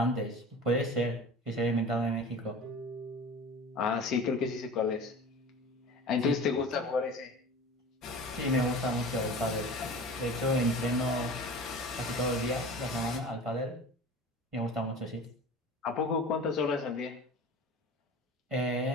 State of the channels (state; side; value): normal; both; correlation 0.37